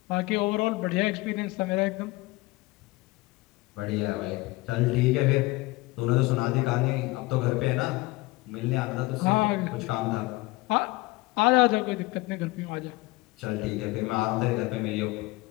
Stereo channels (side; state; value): right; quieter; 21.9 dB